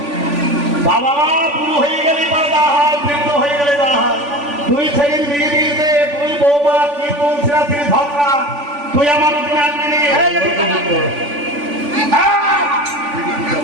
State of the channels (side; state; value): left; late; 3.5 ms